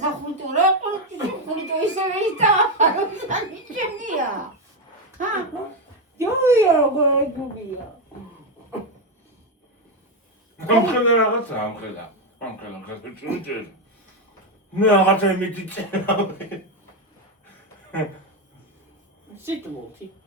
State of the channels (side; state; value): both; normal; correlation 0.07